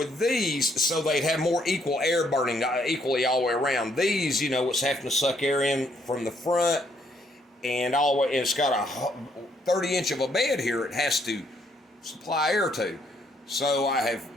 these, so they'd have more equal air burning equally all the way around. These, it's having to suck air in from the front and all the way, and it's got a 30-inch of a bed here it has to supply air to. So I have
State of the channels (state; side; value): normal; both; correlation 0.70